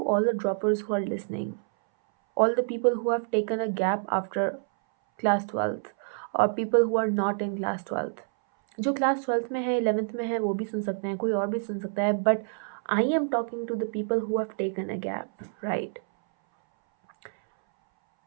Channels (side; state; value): left; silent; 59 dB below the other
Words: all the droppers who are listening, all the people who have taken a gap after class 12th, or people who are not in class 12th. जो class 12th में है, 11th में है, वो भी सुन सकते हैं, कोई और भी सुन सकता है, but I am talking to the people who have taken a gap, right?